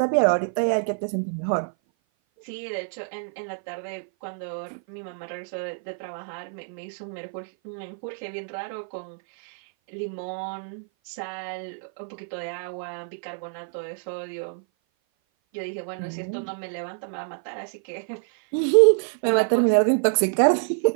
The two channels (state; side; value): silent; left; 56 dB below the other